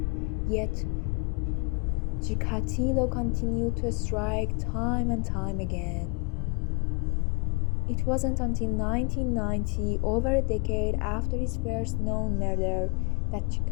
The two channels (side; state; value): right; quieter; 32.7 dB